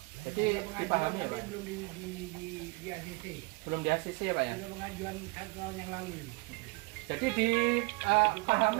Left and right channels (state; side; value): quieter; left; 26.2 dB